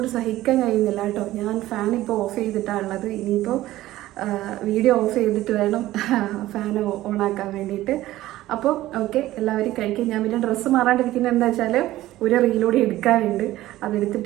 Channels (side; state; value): left; quieter; 15.6 dB